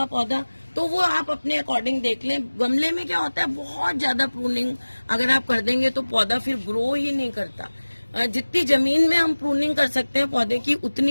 पौधा, तो वो आप अपने अकॉर्डिंग देख लें। गमले में क्या होता है, बहुत ज्यादा प्रूनिंग अगर आप कर देंगे तो पौधा फिर ग्रो ही नहीं करता। जितनी जमीन में हम प्रूनिंग कर सकते हैं पौधे की,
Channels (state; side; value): inverted; both; correlation -1.00